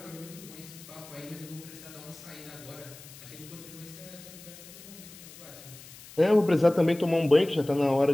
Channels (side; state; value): left; noise; hiss, 18 dB below the sound